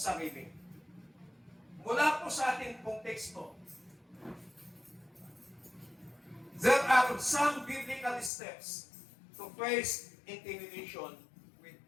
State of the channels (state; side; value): drops out; right; at 8.3 s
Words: Mula po sa ating pong teksto, there are some biblical steps to face intimidation with